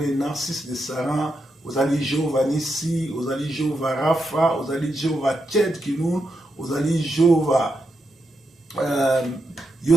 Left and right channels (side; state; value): both; normal; correlation 0.84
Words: Narcisse de Saran, ozali Jehovah Nissi, ozali Jehovah Rapha, ozali Jehovah Tchedkinoun, ozali Jehovah